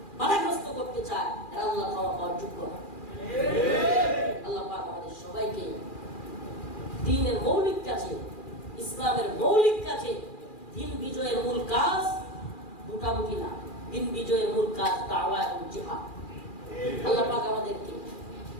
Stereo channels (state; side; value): late; right; 2.4 ms